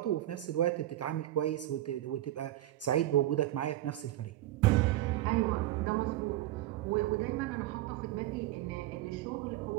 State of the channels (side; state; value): left; quieter; 14.7 dB